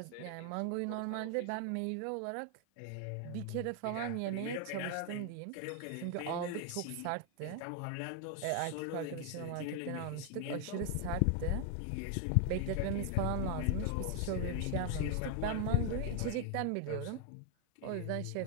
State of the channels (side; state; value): both; different; correlation 0.00